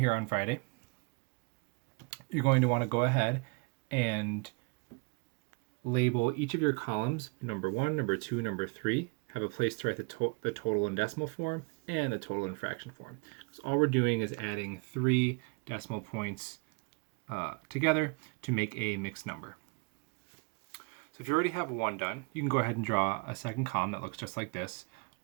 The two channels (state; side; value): quieter; left; 32.4 dB